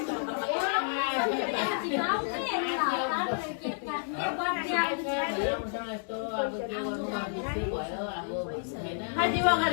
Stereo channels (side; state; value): right; silent; digital silence